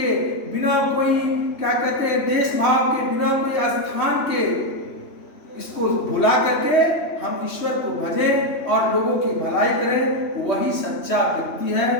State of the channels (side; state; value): right; late; 3.2 ms